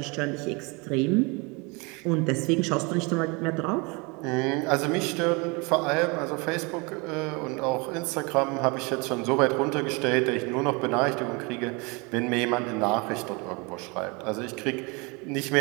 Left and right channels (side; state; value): left; quieter; 28.9 dB